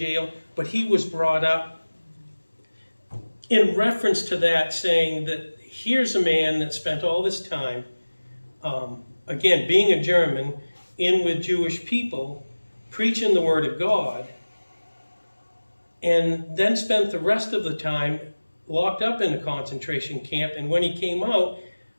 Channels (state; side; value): inverted; both; correlation -1.00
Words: but he was brought up in reference to that, saying that here's a man that spent all this time, again, being a German, in with Jewish people, preaching the Word of God, and then spent the rest of the time locked up in a concentration camp. And when he came out,